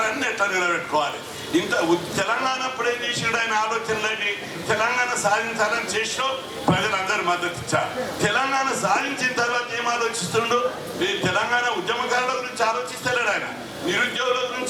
ఎట్లా నిలబెట్టుకోవాలి. ఇంత తెలంగాణ అప్పుడే చేసాడు ఆయన ఆలోచనలని. తెలంగాణ సాధించాలని చేసినా ప్రజలందరూ మద్దతు ఇచ్చారు. తెలంగాణ సాధించిన తర్వాత ఏం ఆలోచిస్తుండు? ఈ తెలంగాణ ఉద్యమకారుల గురించి ఆలోచిస్తలేడు ఆయన, నిరుద్యోగుల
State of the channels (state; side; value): identical; both; correlation 1.00